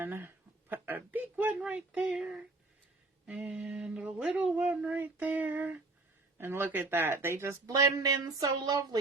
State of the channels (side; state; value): left; quieter; 3.1 dB